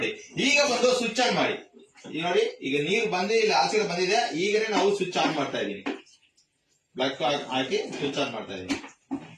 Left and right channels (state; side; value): identical; both; correlation 1.00